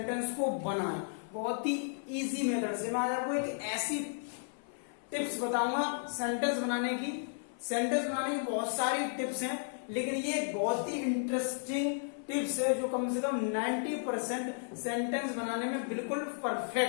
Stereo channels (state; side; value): silent; right; 55 dB below the other